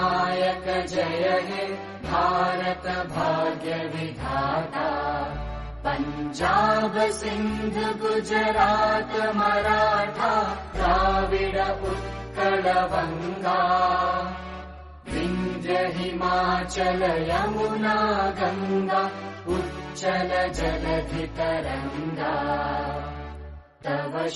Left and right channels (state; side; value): identical; both; correlation 1.00